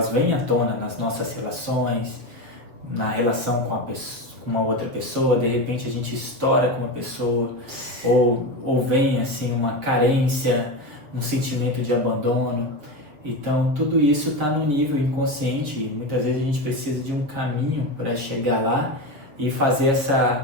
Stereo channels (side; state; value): left; late; 7.6 ms